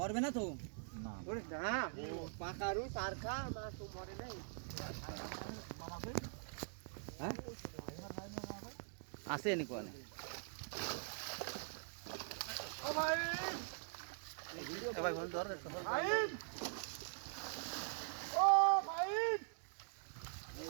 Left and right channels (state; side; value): silent; left; digital silence